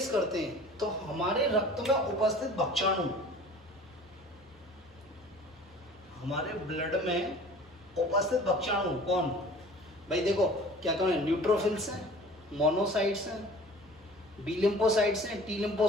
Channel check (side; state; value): both; normal; correlation 0.45